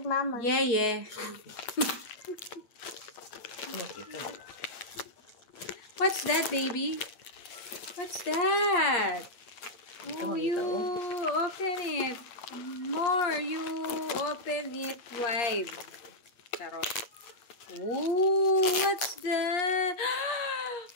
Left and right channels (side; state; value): right; late; 8.5 ms